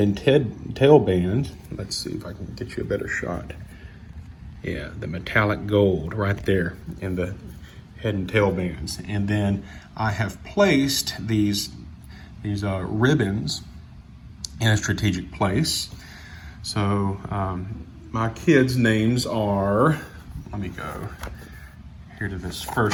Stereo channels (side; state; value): both; identical; correlation 1.00